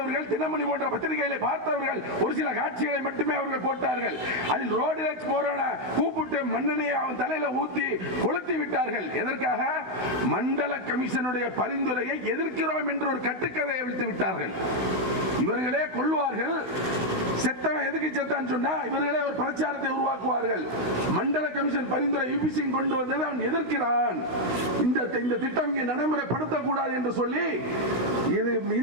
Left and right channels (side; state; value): left; late; 16 ms